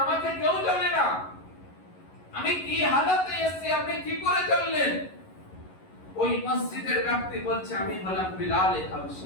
আমাকে কেউ জানে না, আমি কি হালাতে এসেছি, আপনি কি করে জানলেন? ওই মসজিদের ব্যক্তি বলছে, আমি হলাম বিলাল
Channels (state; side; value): late; right; 11 ms